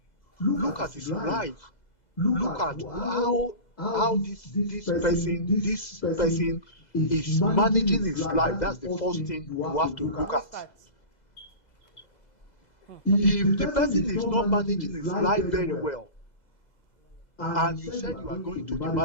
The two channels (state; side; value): late; right; 2.0 ms